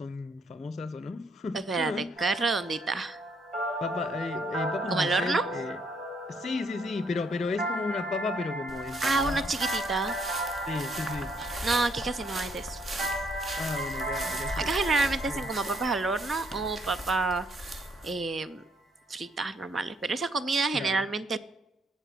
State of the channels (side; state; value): both; normal; correlation 0.69